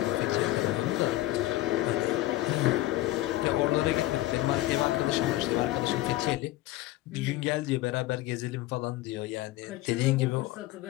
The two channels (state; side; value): quieter; right; 16.5 dB